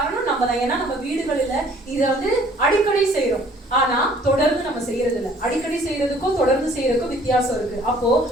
நம்ம தான். ஏன்னா நம்ம வீடுகளில இதை வந்து அடிக்கடி செய்யறோம், ஆனா தொடர்ந்து நம்ம செய்யறது இல்லை. அடிக்கடி செய்யறதுக்கும் தொடர்ந்து செய்யறதுக்கும் வித்தியாசம் இருக்கு. அப்போ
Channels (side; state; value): both; normal; correlation 0.57